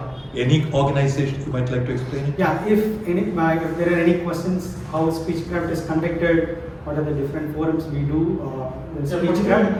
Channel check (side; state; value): both; identical; correlation 1.00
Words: Any organization you might like to explain it? Yeah, if there are any questions, how Speechcraft is conducted, what are the different forums we do,